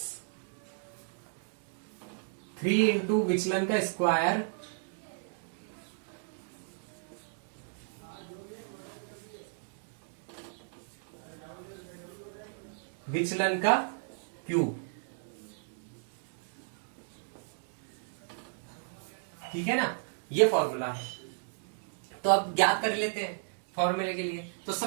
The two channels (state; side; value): silent; left; digital silence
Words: 3 इंटू विचलन का स्क्वायर विचलन का क्यूब। ठीक है ना, ये फॉर्मूला है। तो अब ज्ञात कर लेते हैं फॉर्मूले के लिए। तो